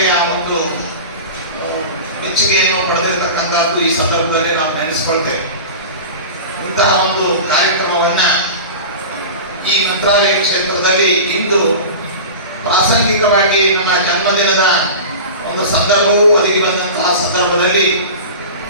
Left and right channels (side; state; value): both; inverted; correlation -0.31